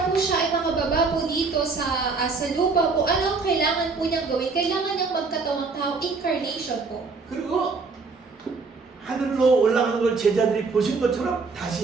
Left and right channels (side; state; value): left; quieter; 4.3 dB